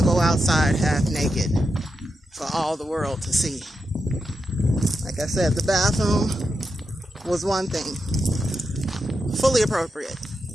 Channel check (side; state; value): both; normal; correlation 0.87